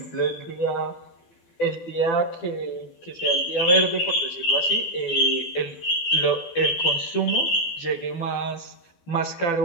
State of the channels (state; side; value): late; right; 12 ms